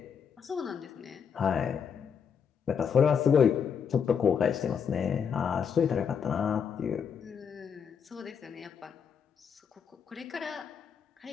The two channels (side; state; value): right; quieter; 7.0 dB